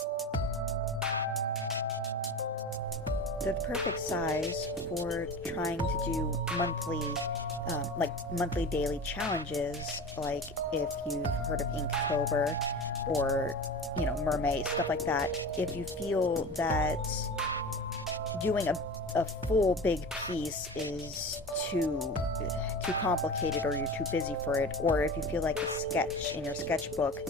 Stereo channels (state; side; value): normal; both; correlation 0.32